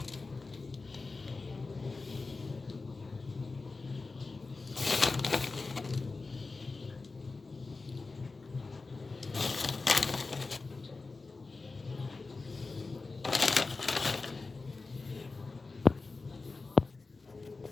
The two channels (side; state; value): right; quieter; 3.9 dB